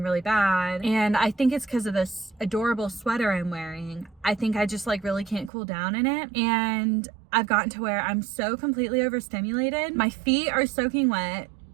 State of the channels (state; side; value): drops out; left; at 5.5 s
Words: really bad, and I think it's because of this adorable sweater I'm wearing. I think I just like really can't cool down in it, and I've gotten to where I'm so completely overstimulated. My feet are soaking wet,